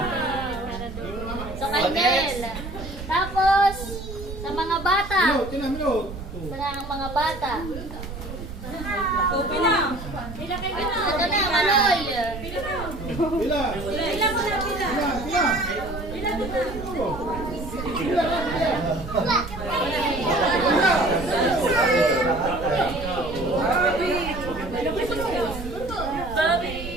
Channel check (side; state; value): right; noise; rumble, 10 dB below the sound